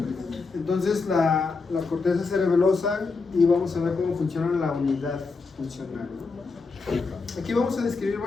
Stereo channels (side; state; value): right; quieter; 4.3 dB